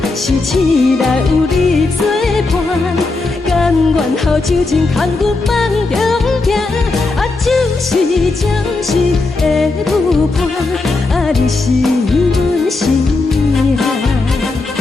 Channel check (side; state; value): right; quieter; 3.5 dB